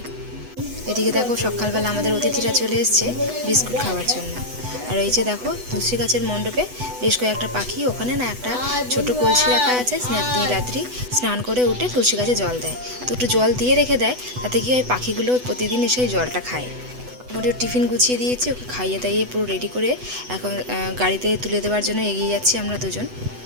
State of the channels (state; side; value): late; left; 8.1 ms